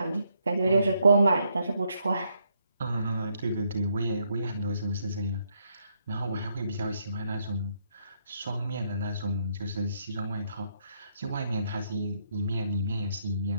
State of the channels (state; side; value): inverted; both; correlation -0.75